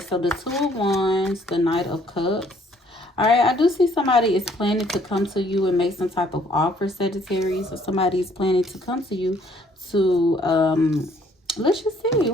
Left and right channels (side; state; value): both; normal; correlation 0.62